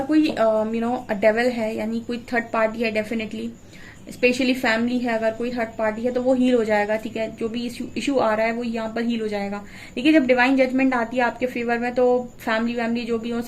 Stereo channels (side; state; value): both; identical; correlation 1.00